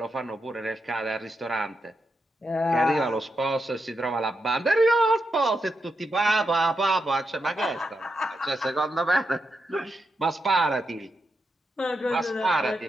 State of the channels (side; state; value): both; normal; correlation 0.85